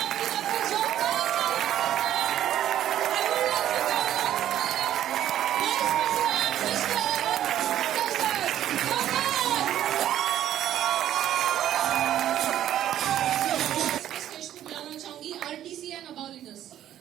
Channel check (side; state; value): left; quieter; 11.7 dB